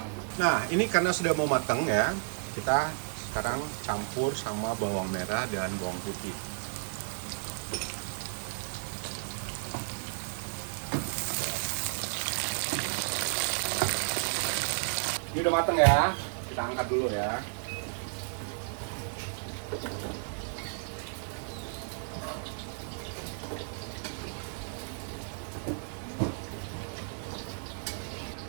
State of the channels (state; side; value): silent; left; 56 dB below the other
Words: Nah, ini karena sudah mau matang ya, kita sekarang campur sama bawang merah dan bawang putih. Ini udah mateng ya, kita angkat dulu ya.